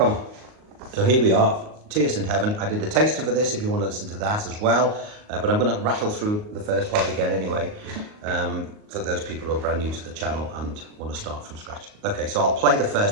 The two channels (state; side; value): late; left; 38 ms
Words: So here we are, Tears in Heaven. I did a taster for this if you want to listen to that as well, but I'm going to rattle through the first part again anyway, for those people who are brand new to the channel and want to start from scratch. Okay, so I'll play the